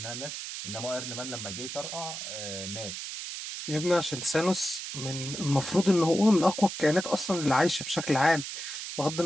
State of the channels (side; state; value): right; noise; hiss, 7 dB below the sound